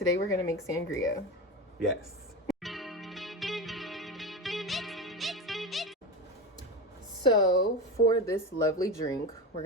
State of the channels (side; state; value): both; normal; correlation 0.21